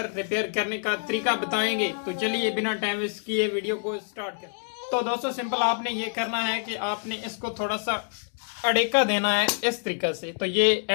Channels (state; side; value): silent; right; 60 dB below the other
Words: रिपेयर करने का तरीका बताएंगे। तो चलिए बिना टाइम वेस्ट किए वीडियो को स्टार्ट करें। तो दोस्तों सिंपल आपने ये करना है कि आपने इसको थोड़ा सा अड़ेका देना है इस तरीके से, तो ये